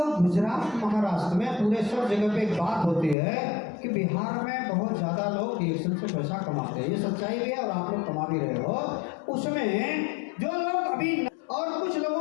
गुजरात महाराष्ट्र में पूरे सब जगह पे एक बात होती है कि बिहार में बहुत ज़्यादा लोग डिएक्शन से पैसा कमाते हैं, ये सच्चाई भी है और आप लोग कमा भी रहे हो। उसमें जो लोग अभी और कुछ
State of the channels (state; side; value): drops out; right; at 3.2 s